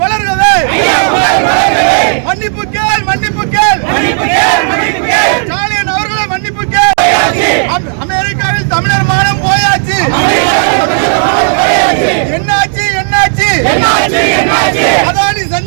வளர்கவே, மன்னிப்பு கேள் மன்னிப்பு கேள், ஸ்டாலின் அவர்களை மன்னிப்பு கேள். அமெரிக்காவில் தமிழர் மானம் போயாச்சு. என்னாச்சு என்னாச்சு, அதானி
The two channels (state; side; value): silent; left; digital silence